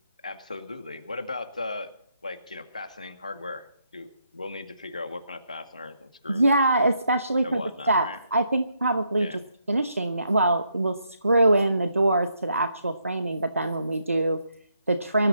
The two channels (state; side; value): inverted; both; correlation -0.77